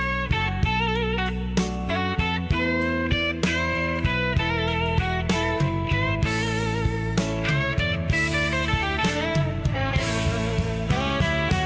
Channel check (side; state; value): both; identical; correlation 1.00